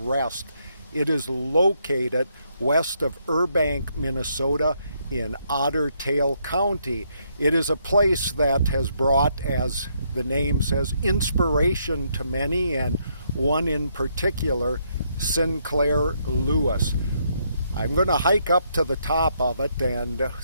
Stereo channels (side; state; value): both; inverted; correlation -0.74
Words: It is located west of Burbank, Minnesota in Otter Tail County. It is a place that has brought, as the name says, inspiration to many, and one in particular, Sinclair Lewis. I'm going to hike up to the top of it and